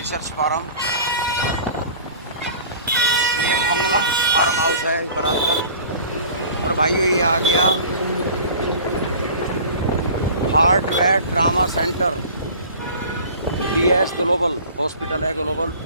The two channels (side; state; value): both; inverted; correlation -0.43